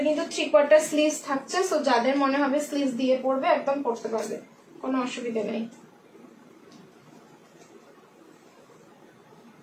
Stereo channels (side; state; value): both; identical; correlation 1.00